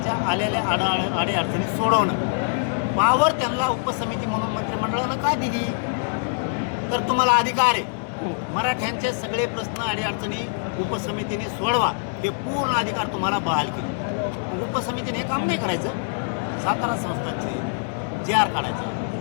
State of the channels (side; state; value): right; silent; digital silence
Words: आलेल्या अडीअडचणी सोडवणं. पावर त्यांना उपसमिती म्हणून मंत्रिमंडळानं का दिली? तर तुम्हाला अधिकार आहे मराठ्यांचे सगळे प्रश्न अडीअडचणी उपसमितीने सोडवा, हे पूर्ण अधिकार तुम्हाला बहाल केले. उपसमितीने हे काम नाही करायचं. सातारा संस्थांचे JR काढायचं,